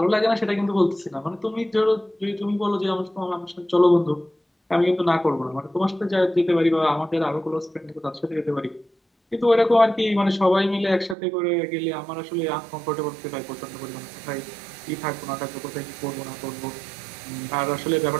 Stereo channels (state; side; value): drops out; left; at 11.2 s